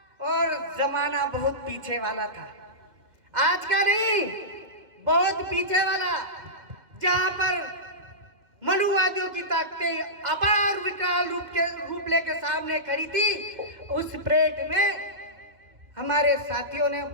और जमाना बहुत पीछे वाला था, आज का नहीं, बहुत पीछे वाला, जहां पर मनुवादियों की ताकतें अपार विकराल रूप लेकर सामने खड़ी थी। उस परेड में हमारे साथियों ने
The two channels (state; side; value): late; left; 2.1 ms